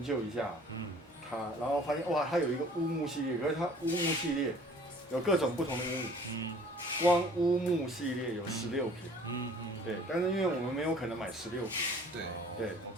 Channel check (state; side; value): normal; both; correlation 0.51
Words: 究一下，然后发现哇，它有一个乌木系列，可是它乌木系列有各种不同的乌木，光乌木系列有16瓶，对，但是因为我们没有可能买16瓶，对，